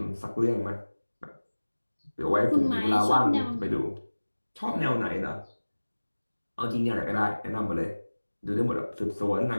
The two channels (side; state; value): both; inverted; correlation -1.00